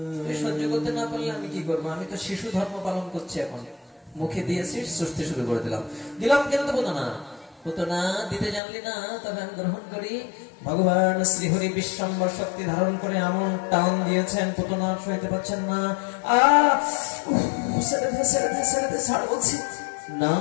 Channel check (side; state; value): right; drops out; at 8.6 s